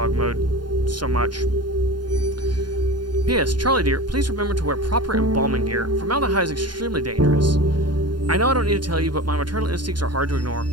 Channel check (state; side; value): late; left; 0.71 ms